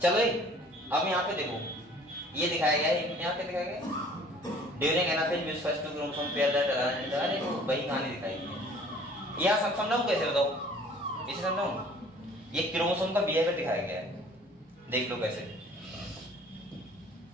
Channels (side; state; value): both; normal; correlation 0.52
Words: चलो अब यहाँ पे देखो ये दिखाया गया है, यहाँ पे दिखाया गया during anaphase muse first two chromosome pair that are वो वही कहानी दिखाई है। यहाँ सब समझाऊं कैसे, बताओ इसे समझाऊं। ये क्रोमोसोम का बिहेवियर दिखाया गया है, देख लो कैसे।